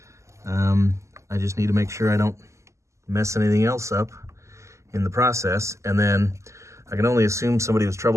I just need to make sure I don't mess anything else up in the process, and then I can only assume somebody was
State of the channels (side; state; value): left; late; 0.14 ms